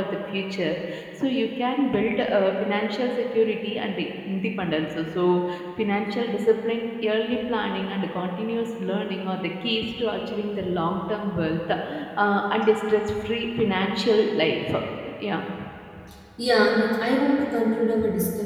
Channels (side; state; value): both; identical; correlation 1.00